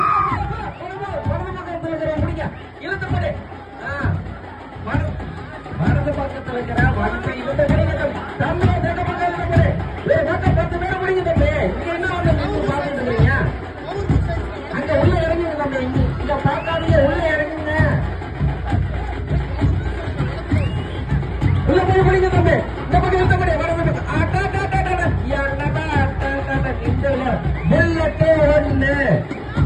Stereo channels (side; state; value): both; identical; correlation 1.00